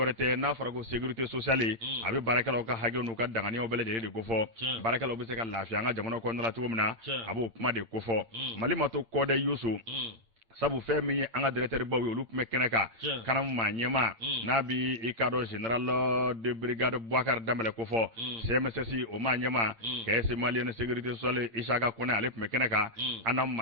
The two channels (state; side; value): late; left; 8.8 ms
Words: tɛ n'a fɔra ko sécurité sociale a bɛ baarakɛlaw ka hakɛw n'u ka danganiyaw bɛɛ lajɛlen de ko fɔ baarakɛlaw bɛ se ka lafiya an ka jamana kɔnɔna la cogo min na a b'o kuma de ko fɔ Mali ma to kɔdɛ Yusu sabu fɛn min ye an ka directeur baw ye olu tun bɛ kɛnɛ kan kanamu maa ɲɛma n'a bi i ka dɔn général de brigade Bouakar Dambɛlɛ ko fɔ CMSS o maa ɲɛma caisse malienne sécurité sociale Isaka Kone ale tun bɛ kɛnɛ kan an na